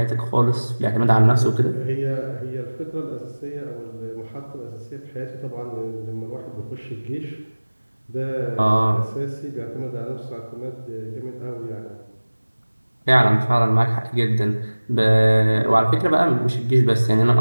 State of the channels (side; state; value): both; inverted; correlation -1.00